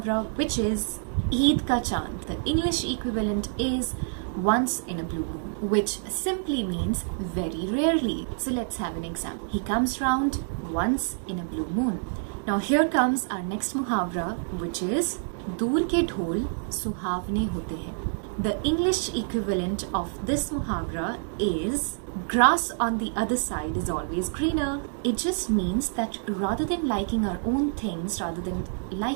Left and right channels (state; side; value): silent; left; digital silence